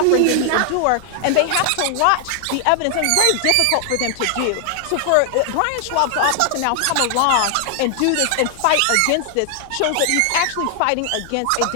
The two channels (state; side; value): different; both; correlation 0.00